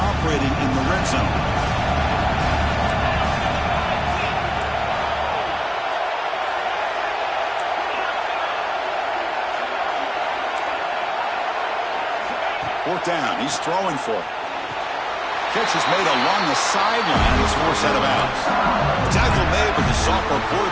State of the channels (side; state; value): both; identical; correlation 1.00